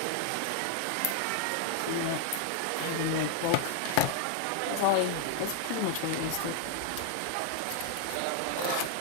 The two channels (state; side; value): different; both; correlation 0.00